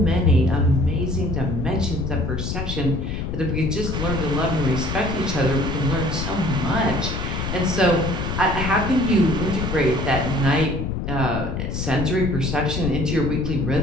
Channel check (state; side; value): noise; left; rumble, 3 dB below the sound